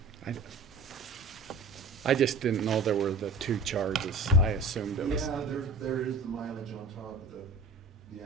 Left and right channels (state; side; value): quieter; left; 3.5 dB